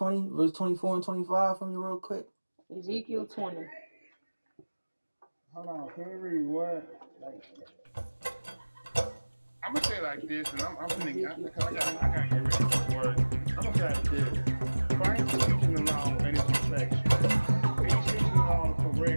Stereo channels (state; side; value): inverted; both; correlation -1.00